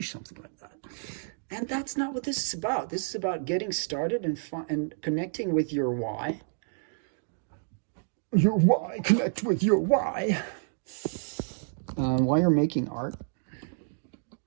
something like that. And that's not what this is about. This is about getting started and connecting with your why. Your why. Connect with your why. While you're making art.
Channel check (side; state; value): left; silent; digital silence